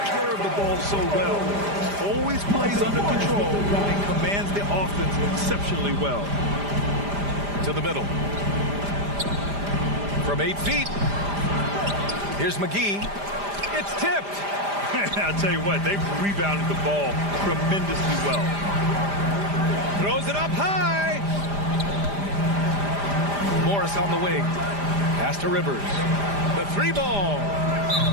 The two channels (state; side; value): late; left; 5.0 ms